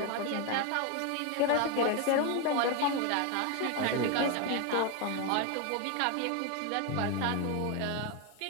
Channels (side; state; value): both; different; correlation 0.02